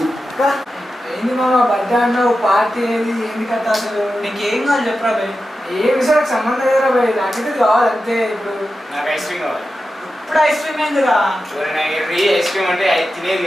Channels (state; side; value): normal; both; correlation 0.91